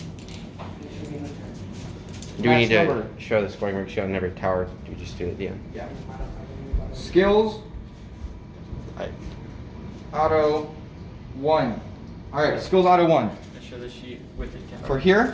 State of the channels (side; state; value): both; identical; correlation 1.00